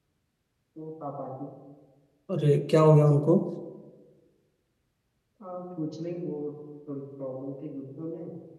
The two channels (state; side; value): identical; both; correlation 1.00